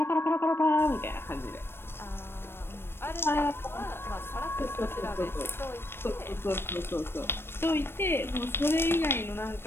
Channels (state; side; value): late; right; 0.11 ms